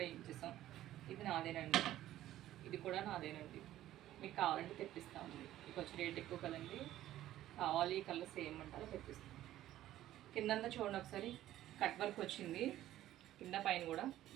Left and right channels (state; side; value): quieter; left; 13.6 dB